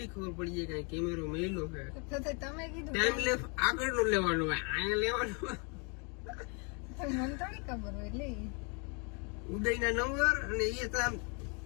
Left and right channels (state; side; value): quieter; right; 34.8 dB